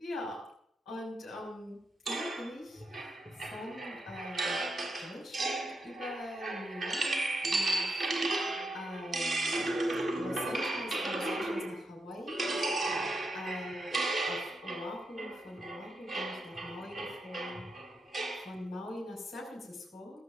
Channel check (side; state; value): both; normal; correlation 0.84